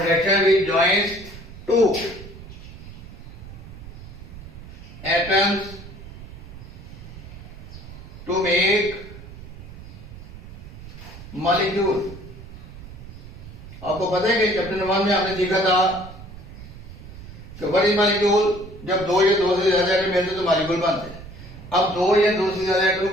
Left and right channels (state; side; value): noise; right; rumble, 15 dB below the sound